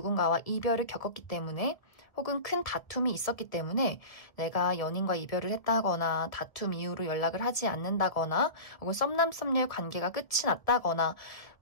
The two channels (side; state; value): right; late; 1.8 ms